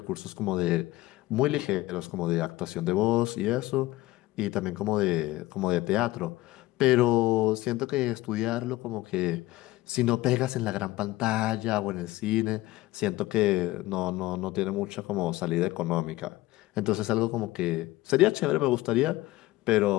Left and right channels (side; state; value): right; quieter; 18.0 dB